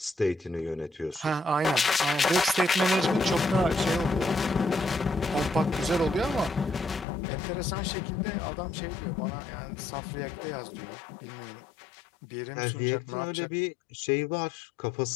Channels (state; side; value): drops out; right; at 7.1 s